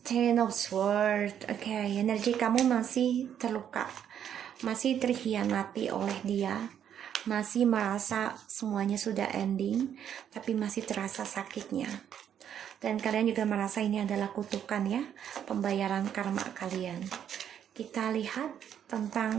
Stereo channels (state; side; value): quieter; left; 9.3 dB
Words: Ten of Swords. Oke, energi kamu masih terluka, masih terhianati oleh dia, masih merasa semuanya sudah ending, tapi masih terasa sakitnya. Dan kalian juga merasa ini adalah kutukan ya, pembayaran karma kalian. Kita lihat